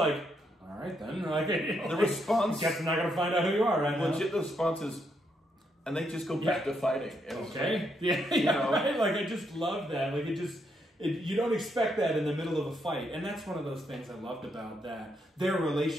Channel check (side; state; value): both; normal; correlation 0.77